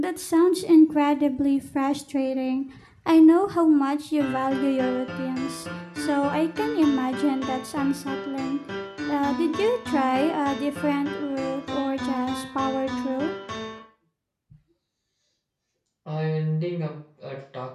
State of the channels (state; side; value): identical; both; correlation 1.00